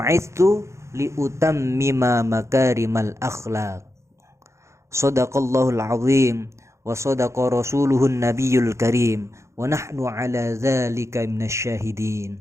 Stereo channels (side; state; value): left; late; 0.14 ms